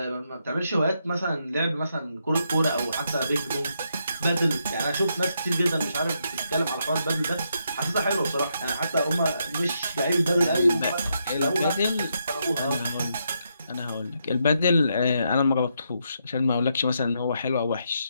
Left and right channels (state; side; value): inverted; both; correlation -0.79